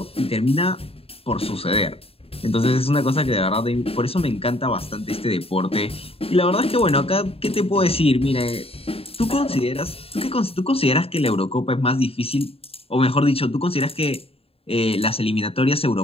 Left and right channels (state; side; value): late; right; 0.28 ms